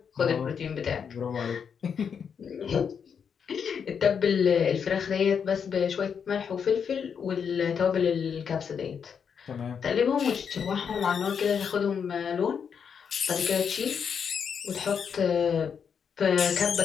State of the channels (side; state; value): right; quieter; 6.9 dB